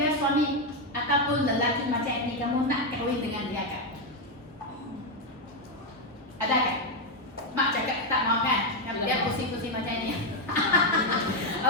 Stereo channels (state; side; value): normal; both; correlation 0.03